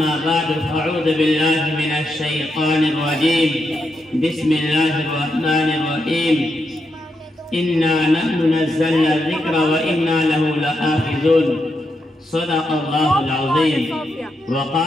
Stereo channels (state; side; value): normal; both; correlation 0.83